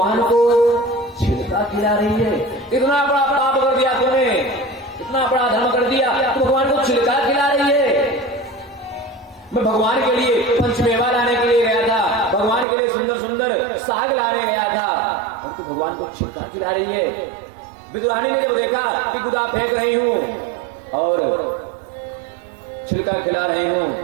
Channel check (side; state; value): left; drops out; at 12.7 s